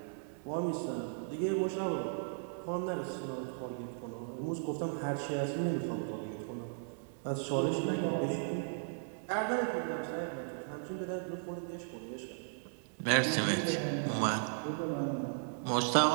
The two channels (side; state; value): left; silent; 54 dB below the other